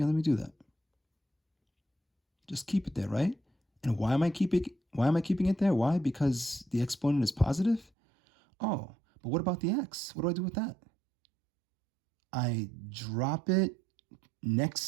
let me do that. Just keep it there, right? And why am I keeping it there? Why? Because the exponent is positive? Oh, but what about the x? What do I do with that? I drop it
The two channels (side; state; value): left; drops out; at 7.9 s